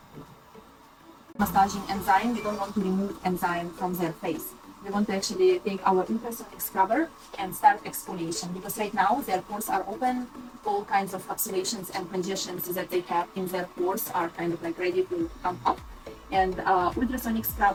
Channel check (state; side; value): identical; both; correlation 1.00